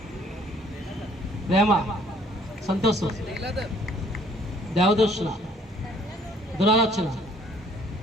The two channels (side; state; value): both; normal; correlation 0.60